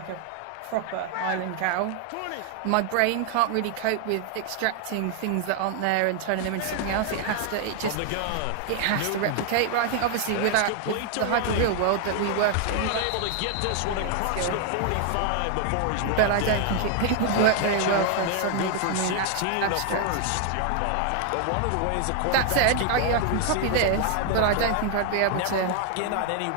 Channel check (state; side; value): different; both; correlation 0.00